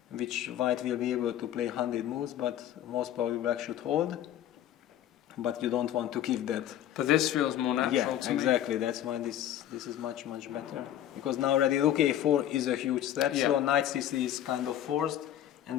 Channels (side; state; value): right; quieter; 11.5 dB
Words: which white will be able to play 100 moves, but most probably black should hold. But you don't want to give that. But this feels more natural to me. Exactly. That's why this is much better. Because now already rook a4 is a huge threat, so knight c3 is kind of forced,